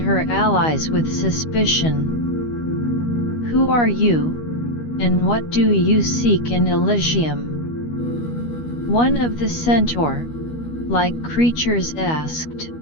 her allies with suspicion. "Who are you, and what do you seek in Elysium?" one of the centaur-like creatures asked.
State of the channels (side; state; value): right; late; 13 ms